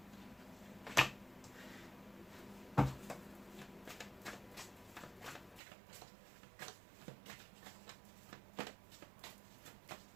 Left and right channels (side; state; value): left; drops out; at 5.6 s